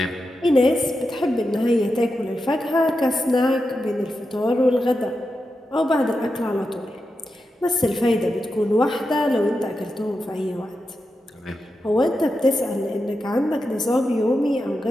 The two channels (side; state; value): both; normal; correlation 0.89